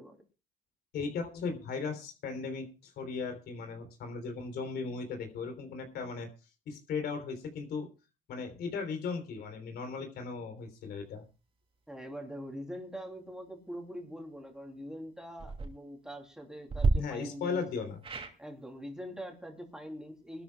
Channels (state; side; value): normal; both; correlation 0.64